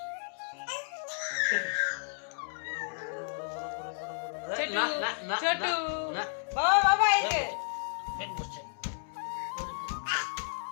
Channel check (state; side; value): silent; right; 56 dB below the other